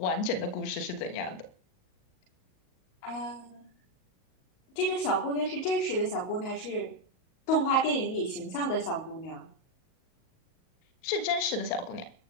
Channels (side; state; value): right; late; 38 ms